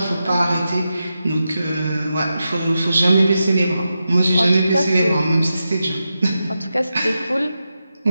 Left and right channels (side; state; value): both; inverted; correlation -0.89